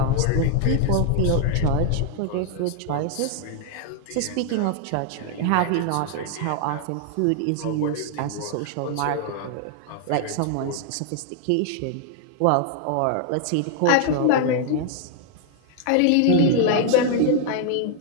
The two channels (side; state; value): both; different; correlation 0.00